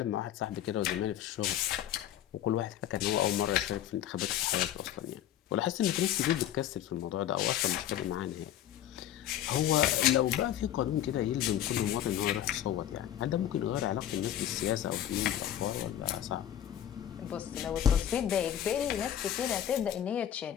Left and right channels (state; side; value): quieter; right; 11.2 dB